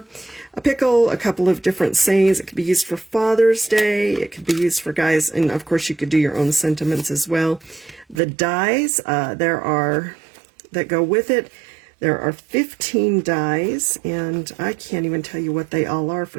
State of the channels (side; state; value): left; drops out; at 8.2 s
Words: a pickle, a couple of different sayings. It could be used for Father's Day. It could be used for guys, and of course you could do your own sentiments as well. The dies, that go with it. There are 15 dies, and I can't even tell you what they all are